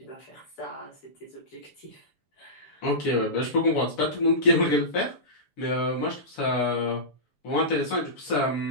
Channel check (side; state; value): right; late; 6.9 ms